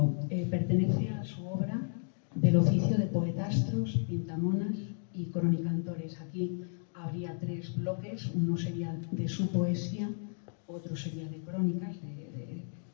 Pertenece a su obra del oficio de poetastros, pintamonas y cronicantores. Aquí habría 3 bloques, uno sería de su poesía, otro sería de crónicas,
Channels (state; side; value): silent; right; digital silence